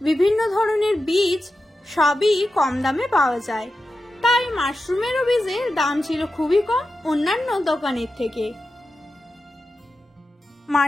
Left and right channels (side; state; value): both; normal; correlation 0.91